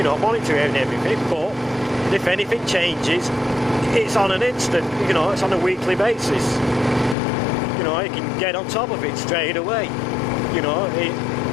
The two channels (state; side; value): drops out; right; at 7.2 s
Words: know, monitoring everything, but if anything changes, it's on an instant, you know, it's on a weekly basis. You know, he can get on top of it straight away. You know,